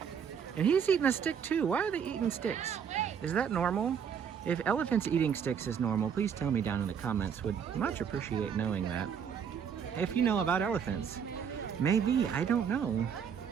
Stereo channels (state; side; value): quieter; left; 7.5 dB